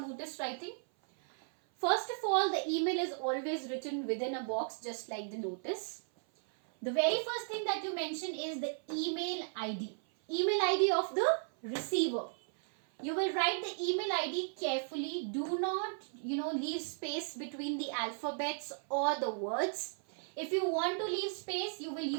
notice writing. First of all, the email is always written within a box just like the notice. The very first thing that you mention is the email ID. Email ID of the receiver. You will write the email ID carefully. Do not, leave space between the alphabets or the words. If you want to leave space, you will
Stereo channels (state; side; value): silent; left; 54 dB below the other